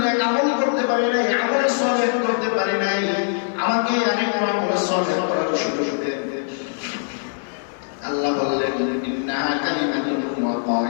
নেক আমল করতে পারি নাই, আমল সালেহ করতে পারি নাই, আমাকে আরেকটু আমল সালেহ করার সুযোগ দেন। আল্লাহ বললেন, ইন্নাহা কালিমাতুন হুয়া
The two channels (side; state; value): right; silent; 64 dB below the other